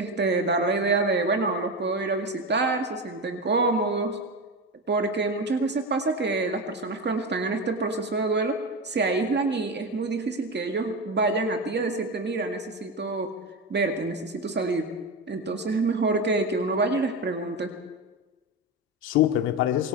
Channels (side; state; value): both; normal; correlation 0.18